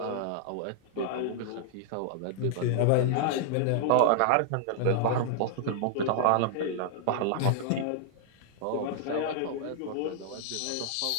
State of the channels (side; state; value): both; different; correlation -0.01